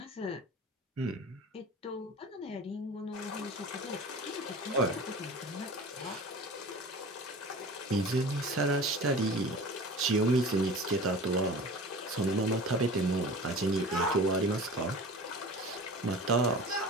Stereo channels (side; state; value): both; normal; correlation 0.37